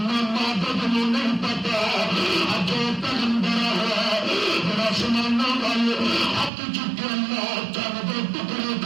بد نہیں پتا اج پیغمبر ہے ذرا سمانا والے ہاتھ چکے اللہ چل دے ٹکڑے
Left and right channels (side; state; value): left; drops out; at 6.5 s